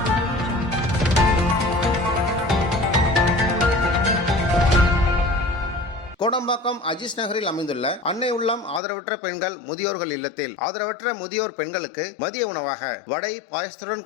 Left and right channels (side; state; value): right; drops out; at 8.8 s